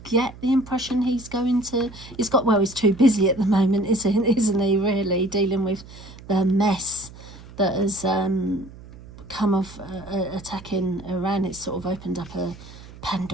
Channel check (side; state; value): right; noise; hum, 18 dB below the sound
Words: get the impression he's going to. He's too busy at the moment, isn't he? Really dealing with the mess that has come of attacking Iran. It's sort of opened up a